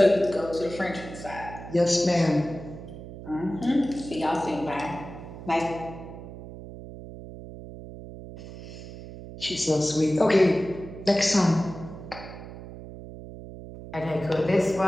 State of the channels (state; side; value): noise; right; hum, 13 dB below the sound